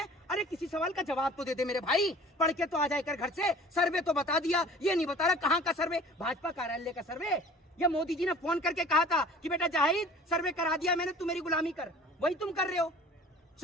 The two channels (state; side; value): normal; both; correlation 0.47